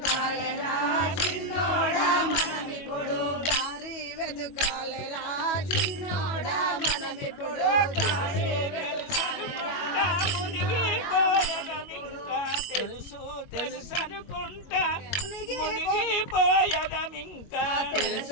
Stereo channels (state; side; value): late; right; 21 ms